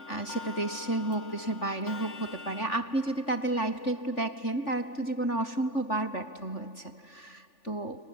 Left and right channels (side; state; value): right; late; 3.5 ms